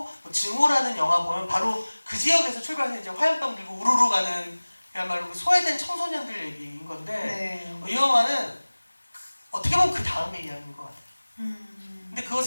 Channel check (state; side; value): inverted; both; correlation -1.00